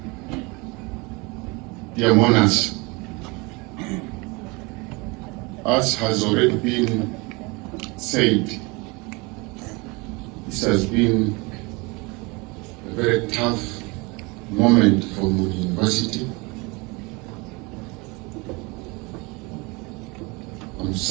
Dear monarchs, as has already been said, this has been a very tough moment for Muni University. On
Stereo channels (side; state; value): left; quieter; 26.7 dB